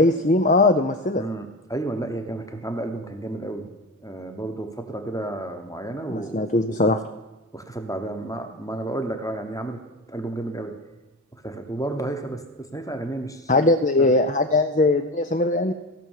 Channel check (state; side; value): normal; both; correlation 0.26